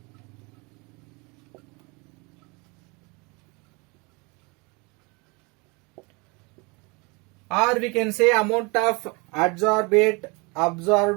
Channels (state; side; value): quieter; left; 28.7 dB